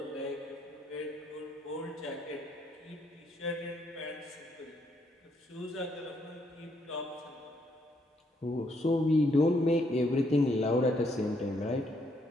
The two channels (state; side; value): normal; both; correlation 0.73